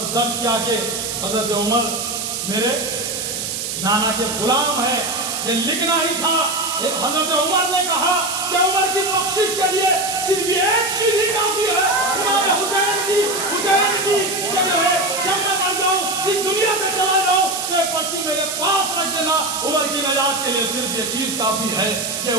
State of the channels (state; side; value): noise; right; hiss, 4 dB below the sound